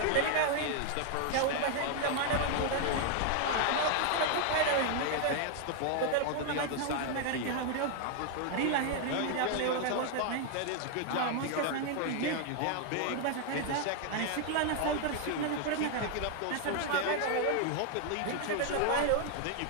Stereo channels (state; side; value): different; both; correlation 0.00